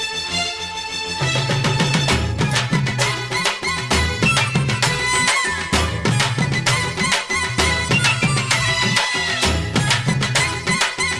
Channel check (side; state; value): both; identical; correlation 1.00